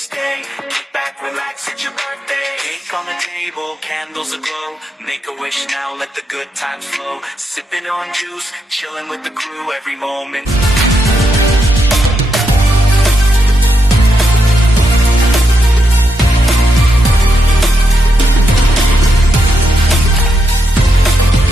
Kick back, relax, it's your birthday. Cake on the table, candles aglow. Make a wish now, let the good times flow. Sipping on juice, chilling with the crew every moment.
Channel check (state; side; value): normal; both; correlation 0.82